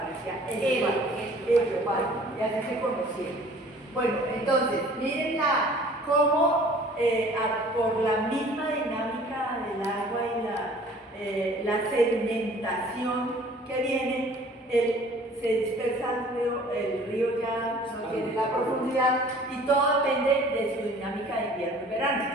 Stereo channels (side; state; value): both; normal; correlation 0.51